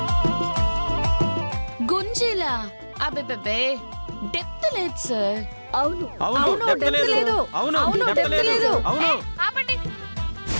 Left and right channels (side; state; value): both; inverted; correlation -1.00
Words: గుంజీలా? అబ్బే డెప్త్ లేదు సార్. అవును ఆపండి.